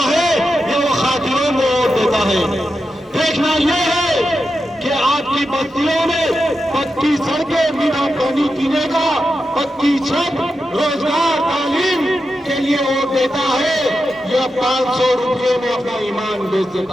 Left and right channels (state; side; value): normal; both; correlation 0.89